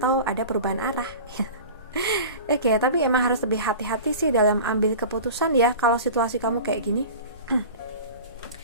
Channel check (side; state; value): both; inverted; correlation -0.36